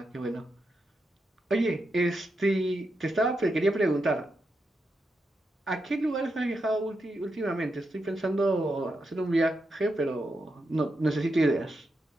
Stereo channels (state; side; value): normal; both; correlation 0.85